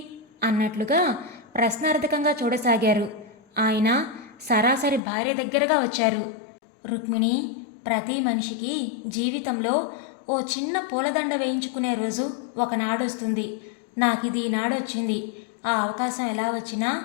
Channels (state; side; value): drops out; right; at 5.0 s